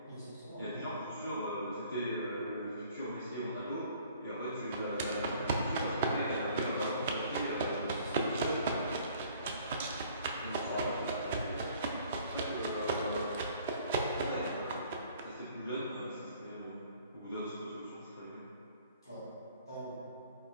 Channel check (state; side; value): inverted; both; correlation -0.55